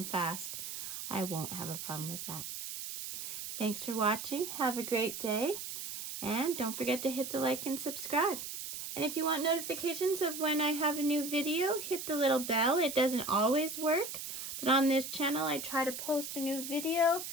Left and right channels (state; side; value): noise; right; hiss, 7 dB below the sound